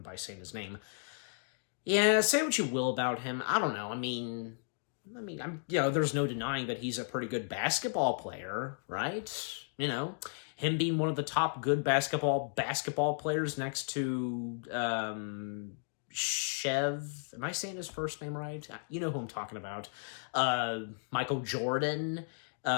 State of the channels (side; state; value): right; silent; digital silence